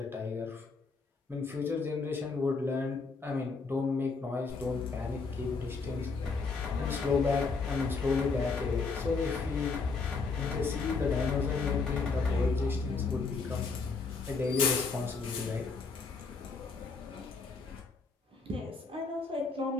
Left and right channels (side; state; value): right; quieter; 4.4 dB